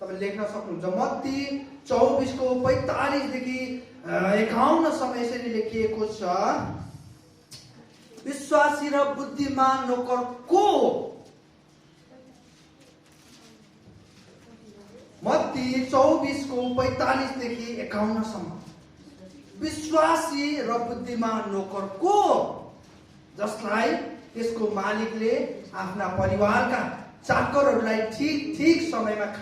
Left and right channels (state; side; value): identical; both; correlation 1.00